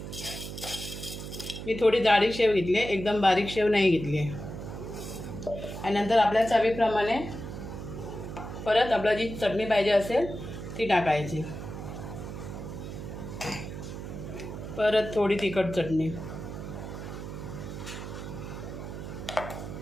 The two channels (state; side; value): noise; right; hum, 8 dB below the sound